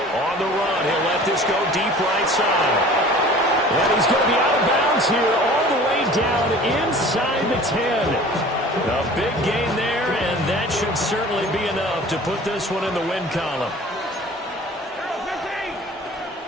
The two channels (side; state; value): both; normal; correlation 0.45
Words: On the run, he'll let this go deep right side. And he's going to be out of bounds here all the way down inside the 10. A big gain there, and that should certainly be enough to put this one in the win column.